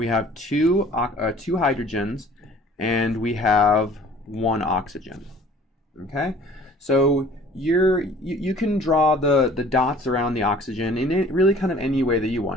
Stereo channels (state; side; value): normal; both; correlation 0.51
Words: have two hydrogens, and we have 1 oxygen. Okay, so you can draw the dots around the oxygen in really kind of any way that you